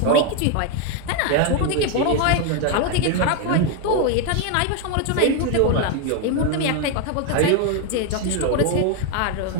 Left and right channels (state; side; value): different; both; correlation 0.01